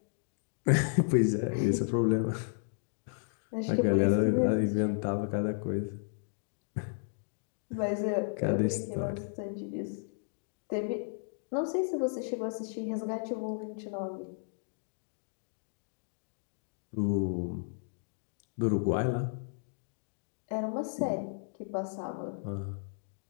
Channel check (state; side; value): silent; right; digital silence